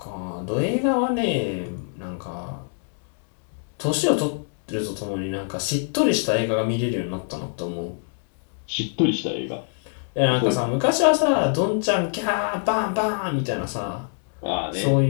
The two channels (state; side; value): silent; right; 62 dB below the other